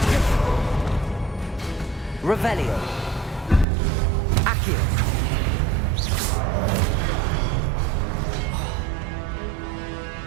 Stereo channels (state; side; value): drops out; left; at 3.7 s